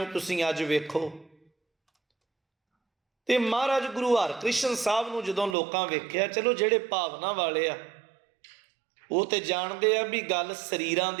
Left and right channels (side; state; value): left; drops out; at 5.6 s